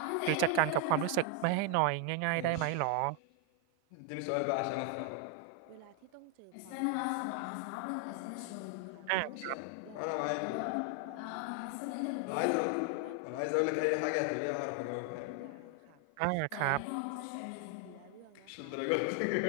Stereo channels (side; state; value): both; different; correlation 0.01